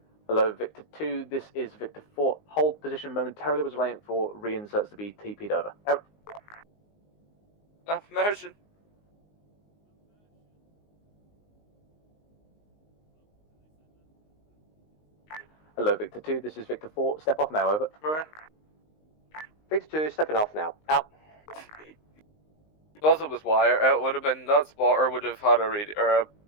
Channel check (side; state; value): right; late; 19 ms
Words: Hello, Victor 2, this is Victor 4. Hold position momentarily, was waiting for reinserts to be TP'd over. Out. Affirmation. Hello, Victor 2, this is Victor 4. Step off now, over. Right. Victor 2, stepping off now. Out. Because it was wire, it would have been, that spotter would have had a radio, or a